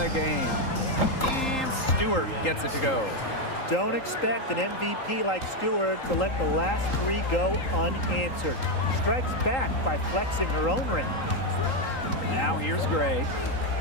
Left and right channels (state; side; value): late; right; 3.8 ms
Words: game. And Stewart gets it to go. Don't expect an MVP like Stewart to let the last 3 go unanswered. Strikes back by flexing her own range. Now here's Gray.